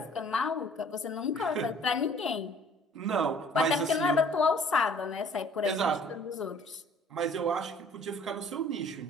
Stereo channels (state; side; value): normal; both; correlation 0.54